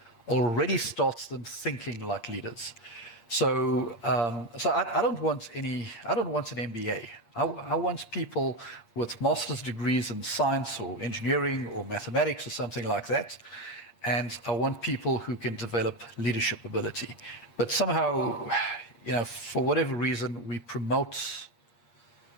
already starts them thinking like leaders. So I don't want an MBA. I want people with master's degrees in science or engineering or mathematics or something like that. And I want people who can develop leadership ability. But somehow, for whatever reason, we promote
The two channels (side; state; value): right; late; 8.6 ms